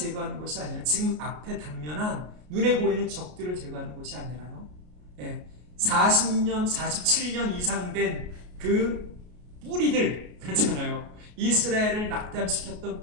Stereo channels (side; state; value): left; late; 33 ms